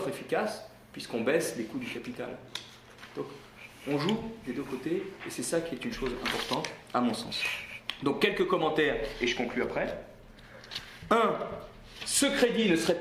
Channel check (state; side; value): identical; both; correlation 1.00